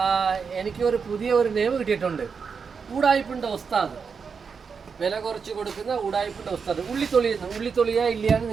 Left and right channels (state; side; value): quieter; left; 5.8 dB